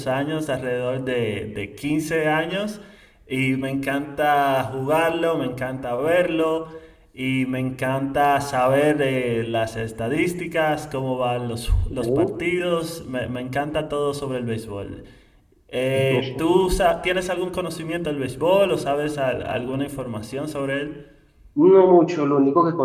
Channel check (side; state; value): both; identical; correlation 1.00